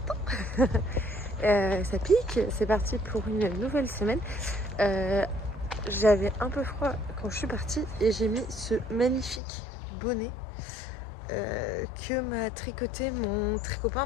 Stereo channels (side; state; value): right; drops out; at 9.4 s